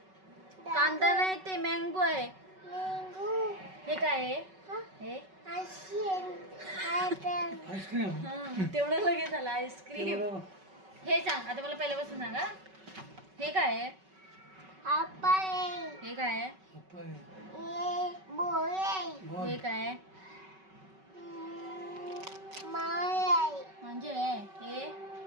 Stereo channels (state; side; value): late; left; 5.3 ms